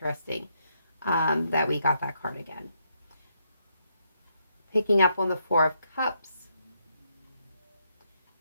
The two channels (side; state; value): both; inverted; correlation -0.77